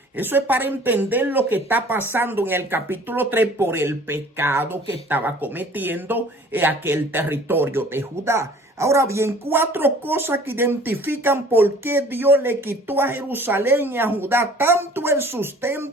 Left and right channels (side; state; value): both; normal; correlation 0.50